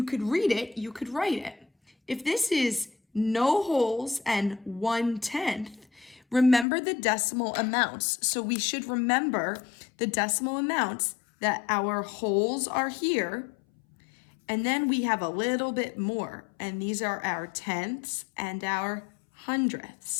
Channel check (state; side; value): drops out; right; at 6.7 s